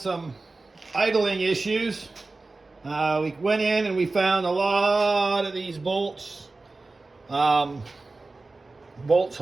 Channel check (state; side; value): quieter; left; 3.4 dB